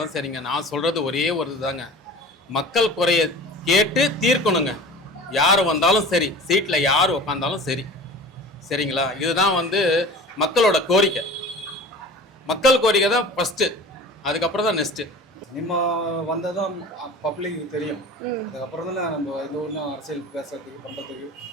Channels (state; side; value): normal; both; correlation 0.38